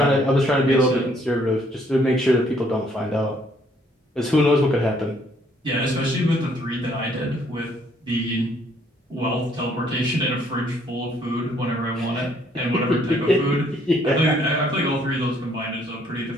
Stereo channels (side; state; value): both; normal; correlation 0.65